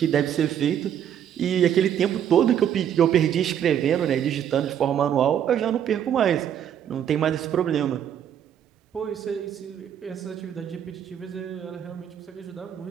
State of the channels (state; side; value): quieter; left; 9.5 dB